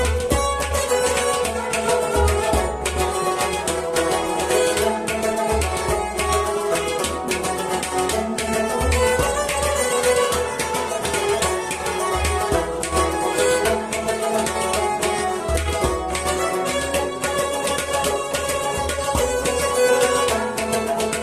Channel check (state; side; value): identical; both; correlation 1.00